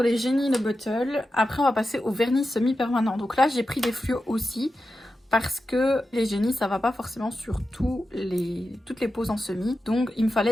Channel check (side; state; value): both; normal; correlation 0.91